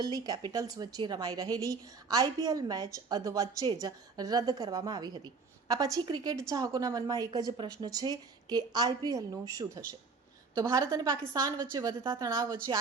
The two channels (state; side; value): quieter; left; 4.6 dB